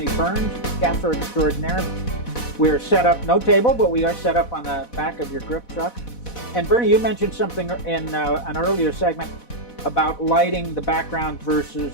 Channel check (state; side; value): late; right; 4.1 ms